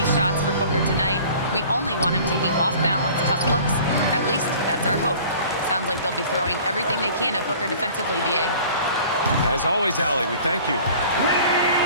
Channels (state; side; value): inverted; both; correlation -0.47